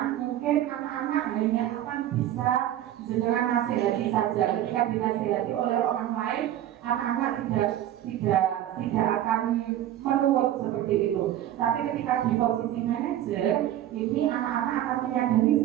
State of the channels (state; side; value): quieter; left; 12.3 dB